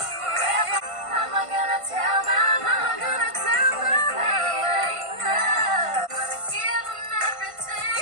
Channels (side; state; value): left; late; 1.5 ms